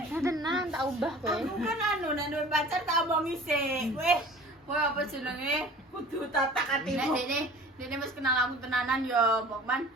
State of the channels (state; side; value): normal; both; correlation 0.44